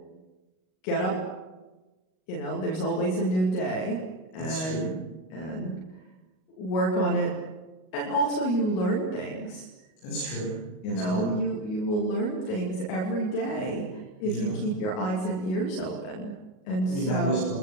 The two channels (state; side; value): late; right; 38 ms